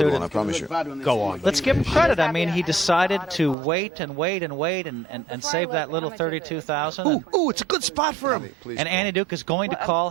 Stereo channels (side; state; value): left; drops out; at 3.6 s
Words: I promise you. Go on. Let's give him credit. I mean, he decided to wait and save that little 32,000. Ooh, it's a good spot for him. And Annie Duke is going to call